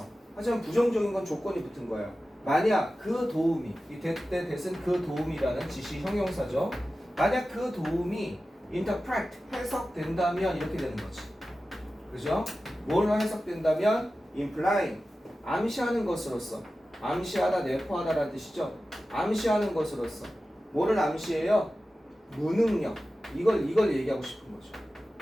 하지만 부정적인 건 조건이 붙은 거야. 만약 그 도움이, 이 대신 그 도움이라는 지시 형용사죠. 만약 그 도움이 interpret, 해석된다면 이렇게 되는 거지. 그죠? 뭘로 해석된다면 implying, 암시하는 것으로서. 암시하다, 내포하다라는 뜻이죠. 암시하는 것으로서. 뭐를 암시해요? 무능력. 이걸 얘기하고 싶은 거죠.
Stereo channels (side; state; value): both; normal; correlation 0.94